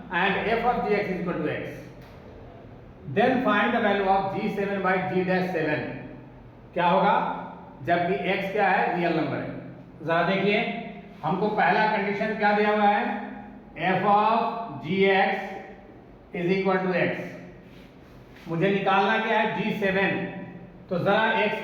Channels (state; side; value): identical; both; correlation 1.00